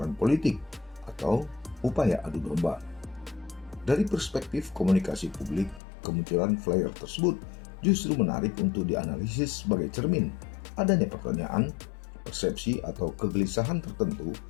politik atau upaya adu domba. Dari perspektif komunikasi publik, kemunculan flyer tersebut justru menarik untuk dianalisis sebagai cermin adanya pertanyaan, persepsi atau kegelisahan tertentu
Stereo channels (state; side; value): drops out; right; at 5.8 s